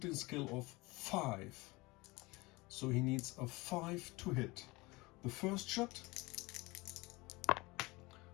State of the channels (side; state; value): right; quieter; 23.3 dB